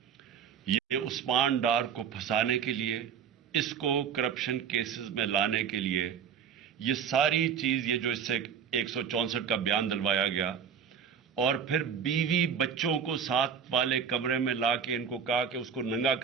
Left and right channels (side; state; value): left; quieter; 7.4 dB